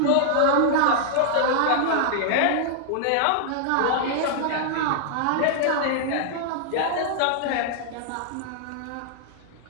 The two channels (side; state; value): both; different; correlation -0.01